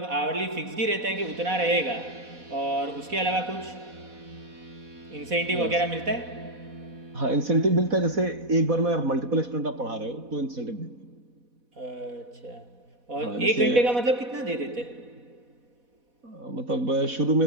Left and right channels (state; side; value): late; left; 4.1 ms